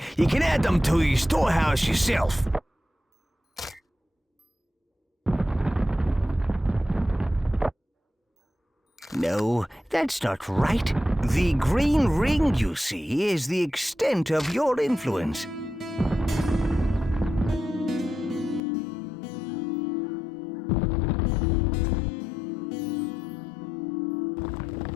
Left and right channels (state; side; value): drops out; right; at 18.6 s